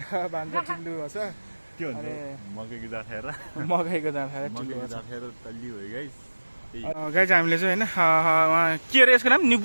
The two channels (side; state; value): both; inverted; correlation -1.00